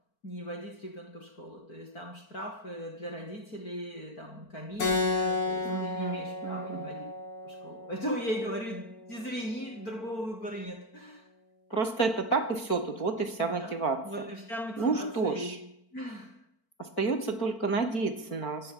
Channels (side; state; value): right; late; 4.5 ms